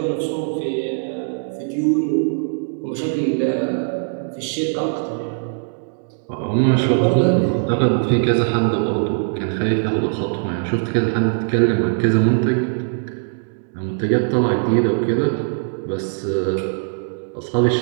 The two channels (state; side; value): silent; left; digital silence